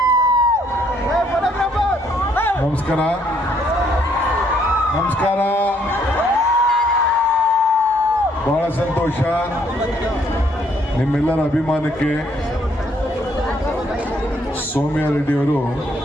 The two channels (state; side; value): normal; both; correlation 0.68